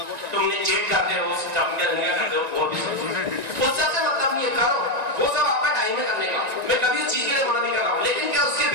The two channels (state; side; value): late; left; 1.9 ms